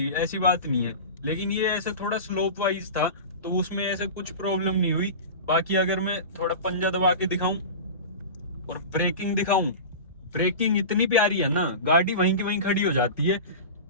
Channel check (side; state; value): both; inverted; correlation -0.30